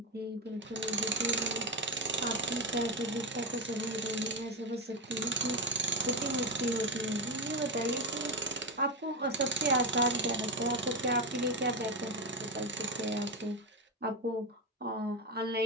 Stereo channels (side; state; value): both; normal; correlation 0.10